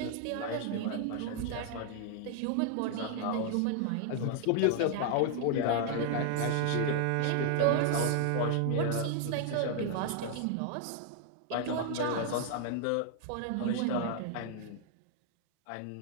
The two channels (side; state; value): both; different; correlation 0.00